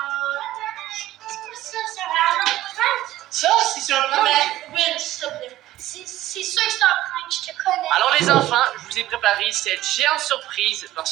Ça va un prank? Ça, c'est sur un plan. Oui, s'il te plaît. C'est sûr que c'est un prank, je te connais. Alors les enfants, je vous ai préparé cette géante surprise parce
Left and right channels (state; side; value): quieter; left; 15.0 dB